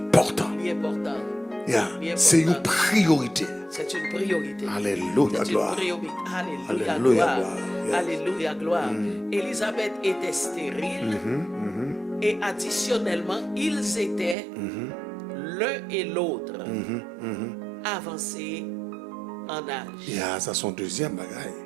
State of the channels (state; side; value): drops out; left; at 14.4 s